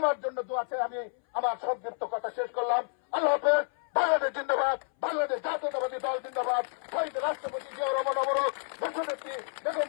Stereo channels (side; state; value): right; silent; 58 dB below the other